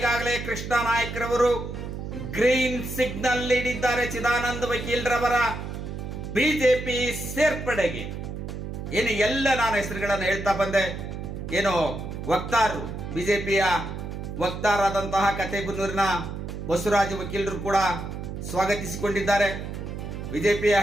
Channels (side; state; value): right; noise; hum, 7 dB below the sound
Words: ಕೃಷ್ಣ ನಾಯಕರವರು ಗ್ರೀನ್ ಸಿಗ್ನಲ್ ನೀಡಿದ್ದಾರೆ ಚಿದಾನಂದ ವಕೀಲರವರ ಬಿಜೆಪಿ ಸೇರ್ಪಡೆಗೆ. ಎಲ್ಲ ನಾನು ಹೆಸರುಗಳನ್ನು ಹೇಳ್ತಾ ಬಂದೆ. ವಕ್ತಾರರು, ಬಿಜೆಪಿಯ ವಕ್ತಾರಾದಂತಹ ಕಥೆಬೆನ್ನೂರಿನ ಬಸವರಾಜ ವಕೀಲರು ಕೂಡ ಸ್ವಾಗತಿಸಿಕೊಂಡಿದ್ದಾರೆ. ಬಿಜೆಪಿಯ